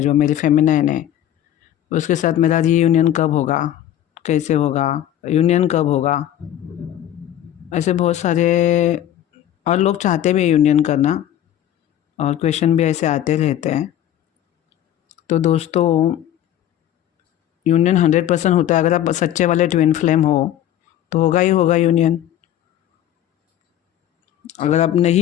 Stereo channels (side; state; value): right; quieter; 11.6 dB